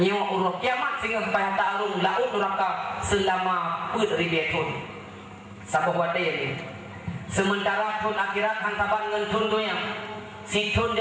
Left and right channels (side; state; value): both; identical; correlation 1.00